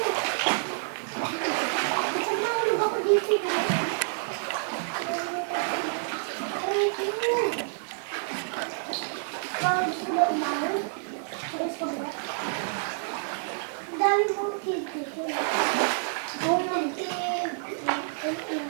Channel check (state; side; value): silent; left; digital silence